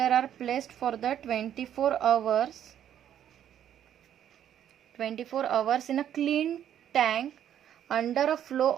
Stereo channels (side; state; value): left; quieter; 10.2 dB